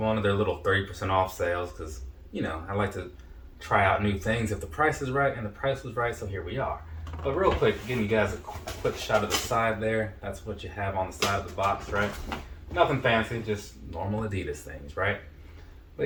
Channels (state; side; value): identical; both; correlation 1.00